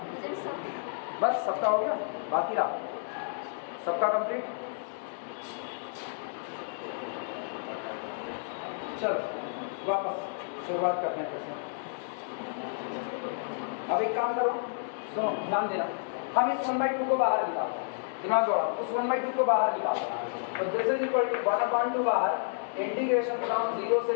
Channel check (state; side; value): silent; right; digital silence